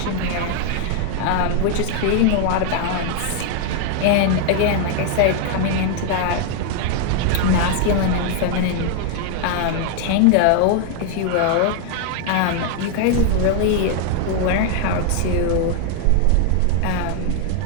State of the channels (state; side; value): different; both; correlation 0.00